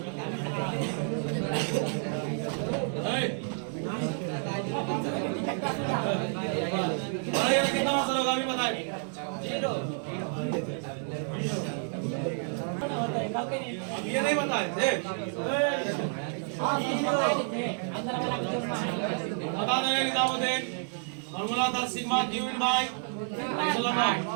कितना असर होगा अभी बताए? 0 अब ये नहीं बताए थे, बता देंगे निजामुद्दीन। फॉर्मूला था sigma Q in by epsilon not.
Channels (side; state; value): left; silent; 58 dB below the other